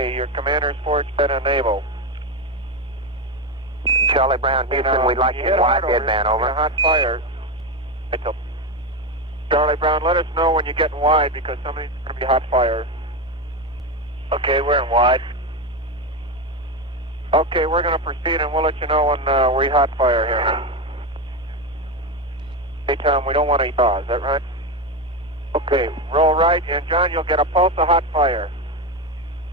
your commander's forward set enable. Charlie Brown, Houston, we'd like you in wide deadband, over. Hot fire. Charlie Brown, let us know when you get in wide because somebody's going to be hot fire. Okay, we're in wide. Okay, we're going to proceed and we'll let you know when we hot fire here. Hey, Tom, we don't want to yaw, is that right? Okay, roll right, and John, you'll get a pulse of hot fire.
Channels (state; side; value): normal; both; correlation 0.13